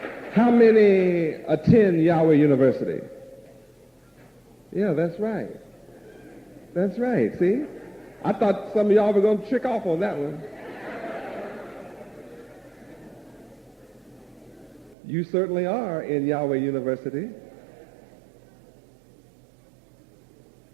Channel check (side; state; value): left; drops out; at 15.0 s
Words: How many attend Yahweh University? Yeah, that's right. That's right, see? I thought some of y'all were going to trick off on that one. You certainly are in Yahweh University.